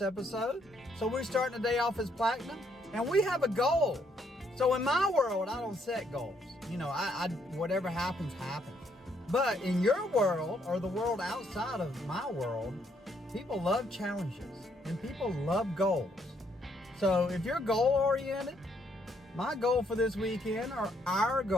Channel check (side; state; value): both; normal; correlation 0.71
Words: episode. So we're starting the day off as platinum and we have a goal. So in my world, I don't set goals. You know, I whatever happens, happens. But in your world or the world outside of my world, people love challenges and people love goals. So if you're goal oriented, my goal for this weekend, or our